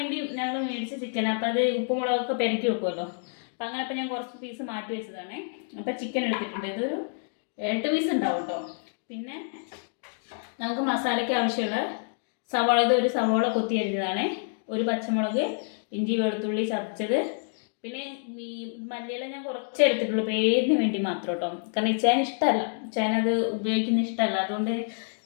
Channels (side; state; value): right; silent; digital silence